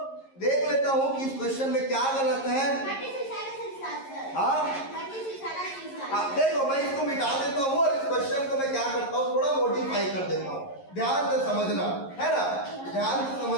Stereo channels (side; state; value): right; late; 11 ms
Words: देख लेता हूँ कि इस क्वेश्चन में क्या गलत है। हाँ देखो, मैं इसको मिटा देता हूँ और इस क्वेश्चन को मैं क्या करता हूँ, थोड़ा मॉडिफाई कर देता हूँ। ध्यान से समझना, है ना, ध्यान से